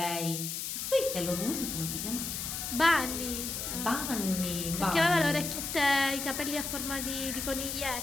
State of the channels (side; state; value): left; noise; hiss, 4 dB below the sound